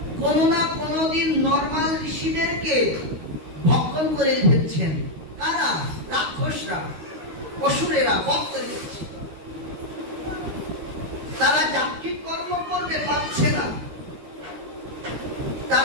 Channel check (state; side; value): late; left; 13 ms